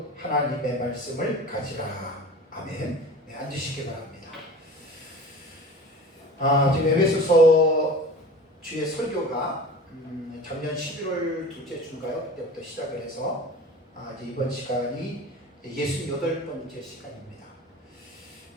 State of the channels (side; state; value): both; normal; correlation 0.38